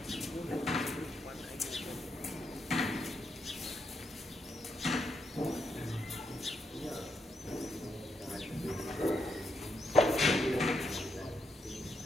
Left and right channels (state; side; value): normal; both; correlation 0.80